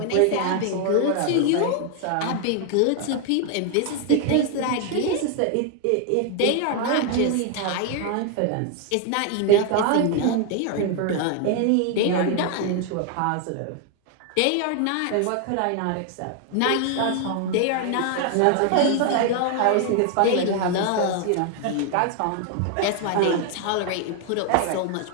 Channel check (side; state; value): both; different; correlation 0.00